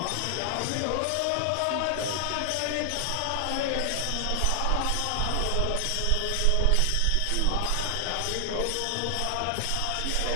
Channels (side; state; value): both; different; correlation 0.00